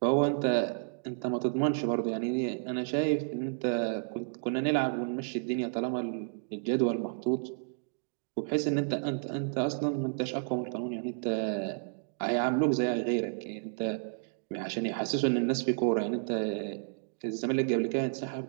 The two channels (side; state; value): left; silent; digital silence